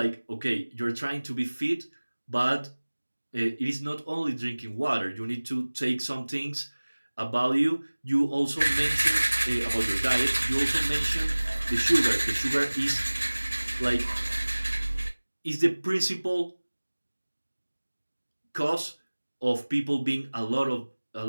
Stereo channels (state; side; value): inverted; both; correlation -1.00